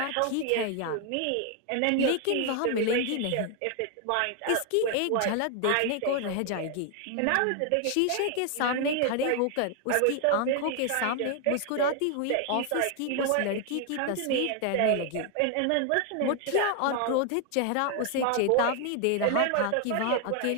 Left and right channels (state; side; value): different; both; correlation 0.00